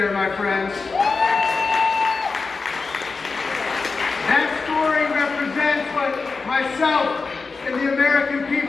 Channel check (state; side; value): quieter; right; 4.4 dB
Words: my friends. That story represents what myself and the American